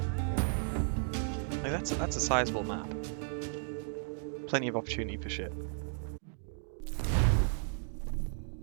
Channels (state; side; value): silent; left; digital silence